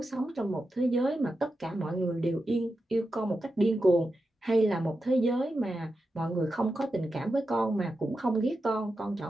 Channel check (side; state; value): both; normal; correlation 0.89